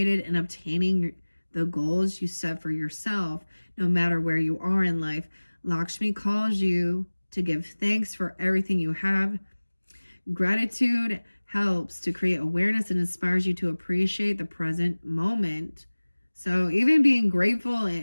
and obtaining the goals you set for yourself, no matter where you are in life. Lakshmi calls you to give thanks for everything you have. Gratitude helps to create awareness and inspires you to appreciate the present moment. So even being grateful,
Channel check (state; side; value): inverted; both; correlation -1.00